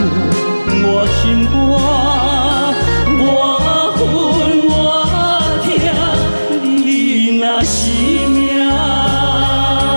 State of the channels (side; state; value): both; inverted; correlation -1.00